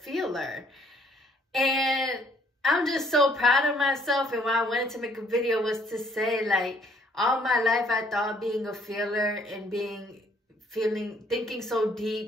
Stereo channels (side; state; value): both; normal; correlation 0.63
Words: And I'm just so proud of myself. And why I wanted to make a video was to say, like, all my life I thought being a feeler and thinking so